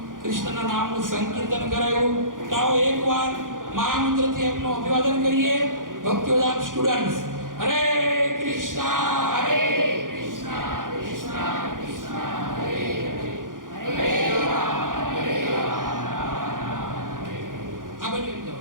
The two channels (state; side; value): late; left; 0.89 ms